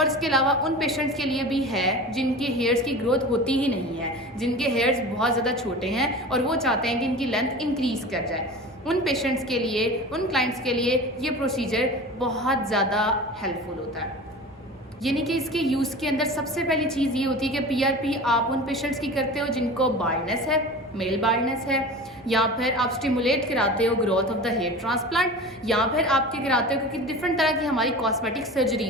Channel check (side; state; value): both; normal; correlation 0.34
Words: इसके अलावा उन पेशेंट्स के लिए भी है जिनके हेयर्स की ग्रोथ होती ही नहीं है, जिनके हेयर्स बहुत ज़्यादा छोटे हैं और वो चाहते हैं कि इनकी लेंथ इंक्रीज़ कर जाए। उन पेशेंट्स के लिए, उन क्लाइंट्स के लिए ये प्रोसीजर बहुत ज़्यादा हेल्पफुल होता है। यानी कि इसके यूज़ के अंदर सबसे पहली चीज़ ये होती है कि पीआरपी आप उन पेशेंट्स की करते हो जिनको बाल्डनेस है, मेल बाल्डनेस है, या फिर आप स्टिमुलेट कराते हो growth of the hair transplant, या फिर आपके कराते हो क्योंकि डिफरेंट तरह की हमारी कॉस्मेटिक